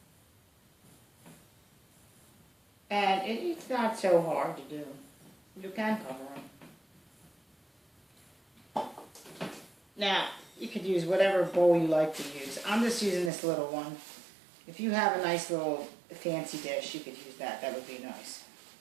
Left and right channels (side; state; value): left; drops out; at 13.3 s